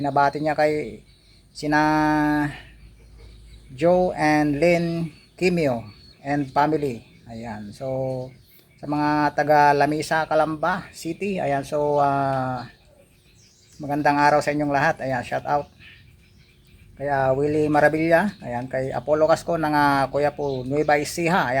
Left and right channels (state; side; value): identical; both; correlation 1.00